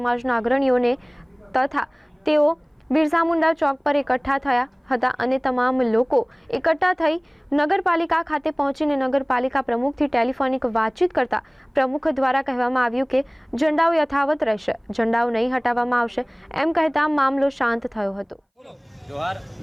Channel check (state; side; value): identical; both; correlation 1.00